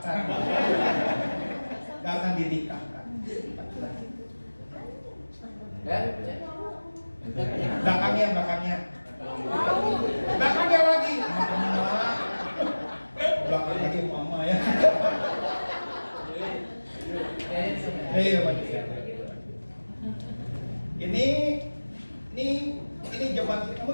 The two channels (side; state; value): both; inverted; correlation -1.00